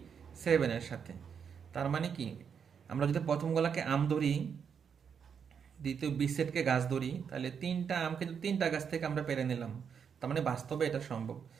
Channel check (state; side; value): quieter; left; 7.1 dB